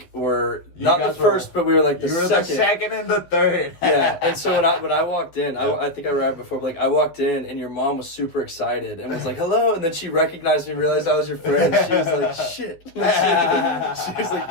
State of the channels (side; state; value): right; late; 12 ms